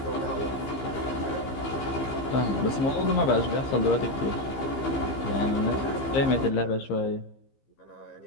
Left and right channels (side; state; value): right; late; 15 ms